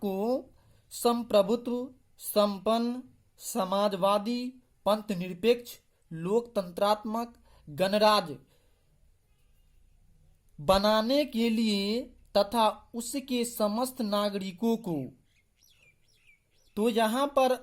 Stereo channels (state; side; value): identical; both; correlation 1.00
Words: संप्रभुत्व संपन्न समाजवादी पंथ निरपेक्ष लोकतंत्रात्मक गणराज्य बनाने के लिए तथा उसके समस्त नागरिकों को, तो यहां पर